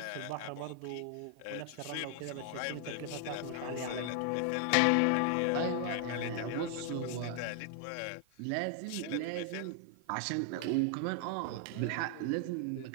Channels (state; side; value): different; both; correlation 0.00